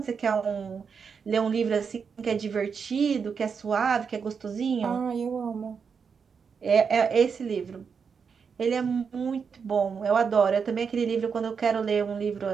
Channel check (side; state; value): left; quieter; 6.1 dB